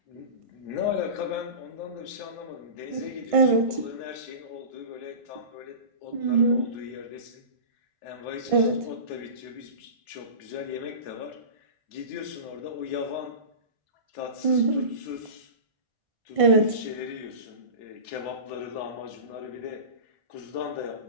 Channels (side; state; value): left; late; 1.6 ms